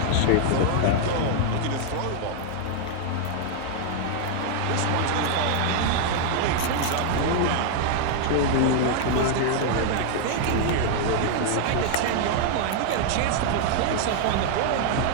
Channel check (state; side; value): different; both; correlation 0.00